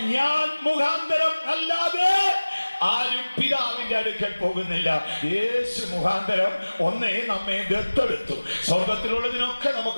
ഞാൻ മുഖാന്തരം അല്ലാതെ ആരും പിതാവിന്റെ അടുക്കൽ പോകുന്നില്ല. യേശു മുഖാന്തരം ഒന്നേ നമ്മെ ദത്തെടുത്തു. സ്വർഗത്തിലുള്ളതിനൊക്കെ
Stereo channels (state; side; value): inverted; both; correlation -1.00